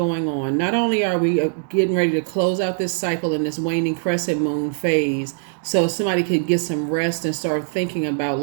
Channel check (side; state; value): left; silent; digital silence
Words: on. Not only are we getting ready to close out this cycle in this waning crescent moon phase, so somebody could get some rest and start thinking about